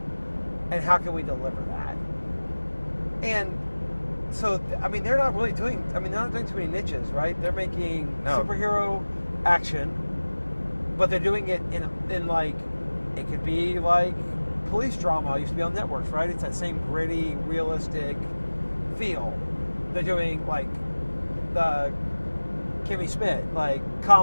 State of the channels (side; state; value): both; inverted; correlation -1.00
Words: And how can we deliver that? And so, I mean, they're not doing too many niches, right? They're making superhero action, but they're doing it in like, it could be like police drama. It used to be on networks, right? It's that same gritty, realistic feel. They're doing like the Kimmy Schmidt, like